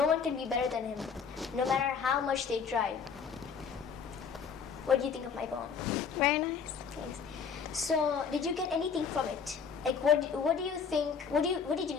one can be better than him, no matter how much they try. What do you think of my poem? Very nice. Thanks. So, did you get anything from it? Like, what do you think? What did you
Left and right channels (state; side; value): quieter; right; 6.3 dB